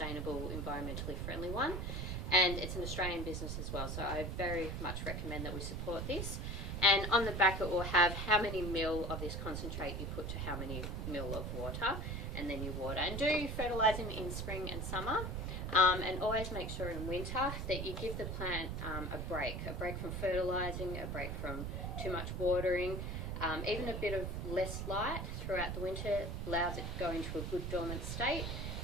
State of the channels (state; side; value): noise; right; rumble, 3 dB below the sound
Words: environmentally friendly one, and it's an Australian business as well, so I very much recommend that we support this. And on the back it will have how many mil of this concentrate you put to how many mil of water, and then you water. And do fertilising in spring and summer, and always make sure in winter that you give the plant a break from fertilising, a break from too much watering. Even a bit of less light throughout the winter allows it to go into a good dormant state,